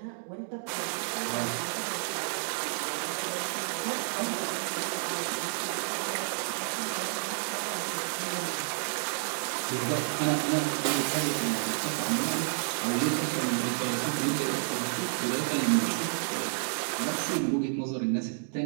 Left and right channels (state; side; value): silent; left; digital silence